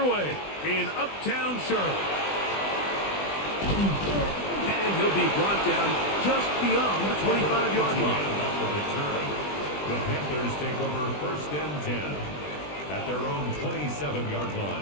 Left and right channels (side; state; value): right; late; 20 ms